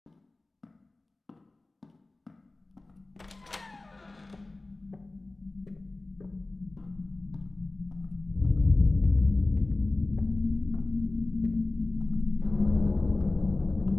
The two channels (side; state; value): right; quieter; 3.1 dB